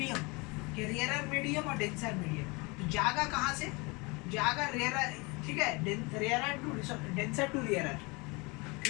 कि रेयर मीडियम और डेंसर मीडियम. तो जागा कहाँ से, जागा रेयर. ठीक है, rare to denser to rare.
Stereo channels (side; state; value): right; quieter; 27.5 dB